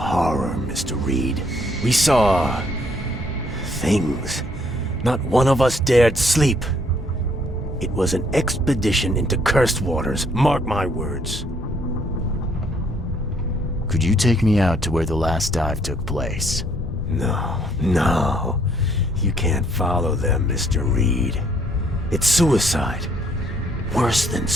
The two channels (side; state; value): both; normal; correlation 0.66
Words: Mr. Reed. We saw things. Not one of us dared sleep. It was an expedition into cursed waters, mark my words. Could you take me out to where the last dive took place? No. You can't follow them, Mr. Reed. It's suicide. Worse than